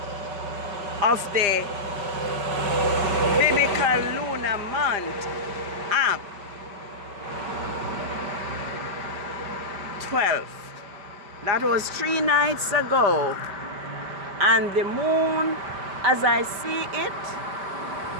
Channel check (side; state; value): left; late; 5.0 ms